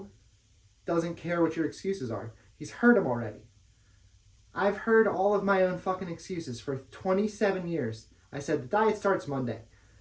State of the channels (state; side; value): identical; both; correlation 1.00